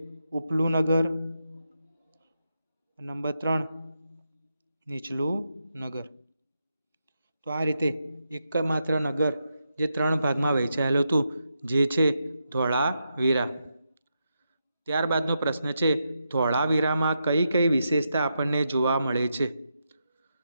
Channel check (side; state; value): both; inverted; correlation -0.84